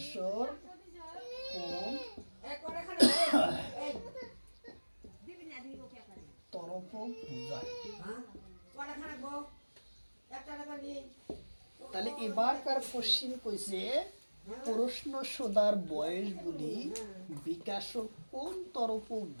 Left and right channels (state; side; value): inverted; both; correlation -1.00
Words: কোন তরফ বুঝায়। তাহলে এবারকার কোশ্চিন কইছে প্রশ্ন সোধার বয়স বলি বিকাশর কোন তরফ